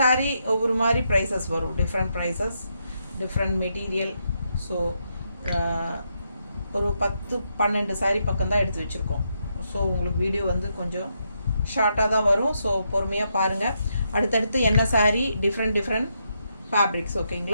ஒவ்வொரு மாதிரி ப்ரைஸஸ் வரும், different prices, different material. So ஒரு 10-12 சாரீ பக்கம் தான் எடுத்து வச்சுருக்கோம். ஸோ உங்களுக்கு வீடியோ வந்து கொஞ்சம் ஷார்ட்டாக தான் வரும். ஸோ பொறுமையாக பாருங்கள். அடுத்தடுத்து என்ன சாரீ, டிஃப்ரெண்ட் ஃபேப்ரிக்ஸ்.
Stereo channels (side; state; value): both; inverted; correlation -0.80